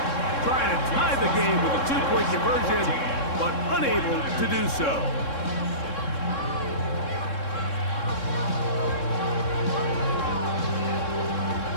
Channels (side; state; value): right; late; 3.7 ms